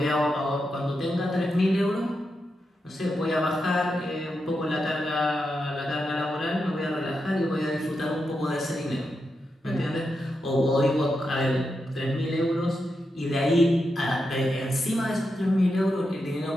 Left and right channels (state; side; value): normal; both; correlation 0.86